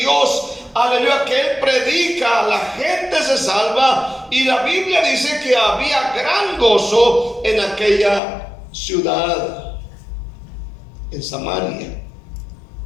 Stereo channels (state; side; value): drops out; right; at 8.2 s